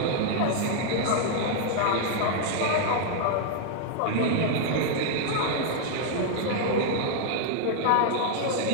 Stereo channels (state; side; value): different; both; correlation -0.01